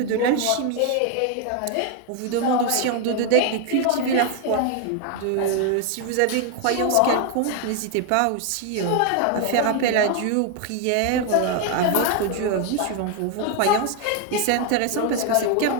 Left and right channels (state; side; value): different; both; correlation 0.01